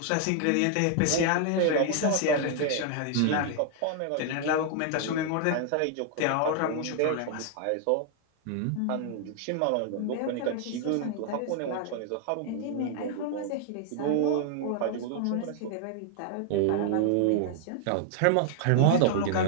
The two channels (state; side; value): different; both; correlation 0.00